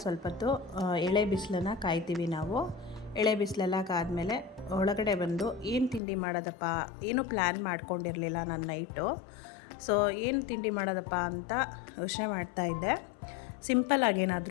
ಸ್ವಲ್ಪ ಹೊತ್ತು ಎಳೆ ಬಿಸಿಲನ್ನು ಕಾಯ್ತೀವಿ ನಾವು. ಎಳೆ ಬಿಸಿಲೆಲ್ಲ ಕಾದ್ಮೇಲೆ ಒಳಗಡೆ ಬಂದು ಏನು ತಿಂಡಿ ಮಾಡೋದಪ್ಪ, ಏನೂ ಪ್ಲ್ಯಾನ್ ಮಾಡ್ಕೊಂಡಿರಲಿಲ್ಲ ನಾನು ನೈಟು. ಸೊ ಏನು ತಿಂಡಿ ಮಾಡೋದಪ್ಪ ಅಂತ ಯೋಚನೆ ಮಾಡ್ತಾಯಿದ್ದೆ. ಸಿಂಪಲ್ಲಾಗಿ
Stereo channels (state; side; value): drops out; right; at 6.0 s